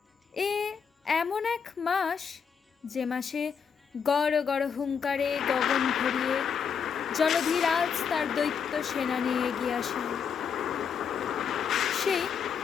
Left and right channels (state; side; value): quieter; right; 6.8 dB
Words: এ এমন এক মাস যে মাসে গড় গড় হুঙ্কারে গগন ভরিয়ে জলধিরাজ তার দৈত্য সেনা নিয়ে এগিয়ে আসেন। সেই